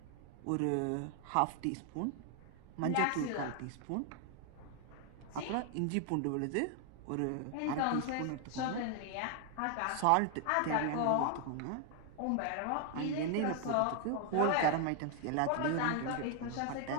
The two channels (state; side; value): different; both; correlation 0.00